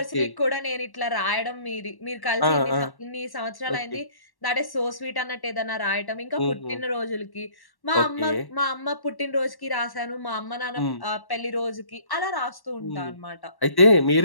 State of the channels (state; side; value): late; right; 1.1 ms